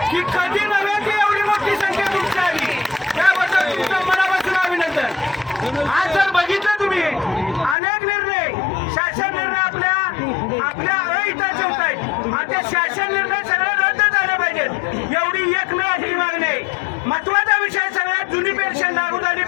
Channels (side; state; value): right; drops out; at 7.8 s